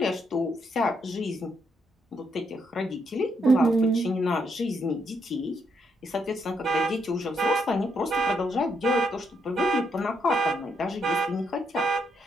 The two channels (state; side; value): normal; both; correlation 0.77